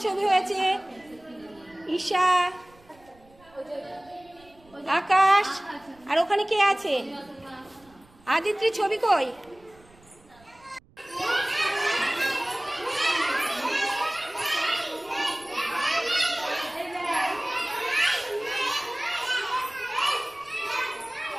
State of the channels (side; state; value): right; noise; rumble, 28 dB below the sound